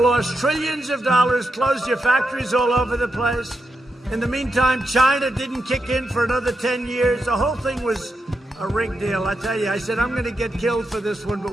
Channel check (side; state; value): both; normal; correlation 0.86